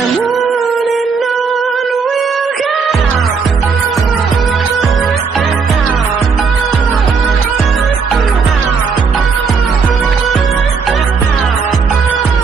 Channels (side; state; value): left; quieter; 5.3 dB